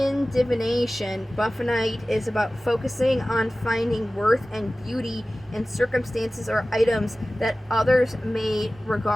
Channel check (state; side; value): normal; both; correlation 0.97